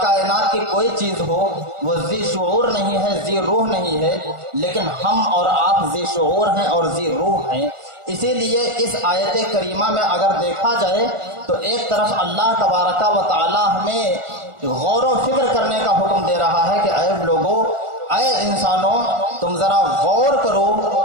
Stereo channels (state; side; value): late; left; 1.4 ms